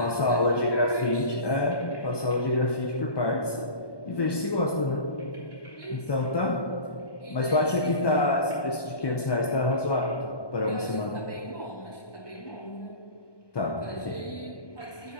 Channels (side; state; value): right; late; 1.2 ms